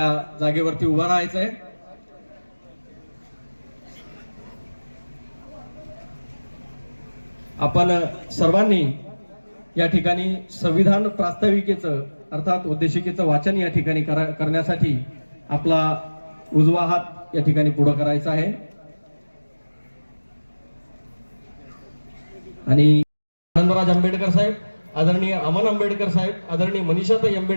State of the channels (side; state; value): both; inverted; correlation -1.00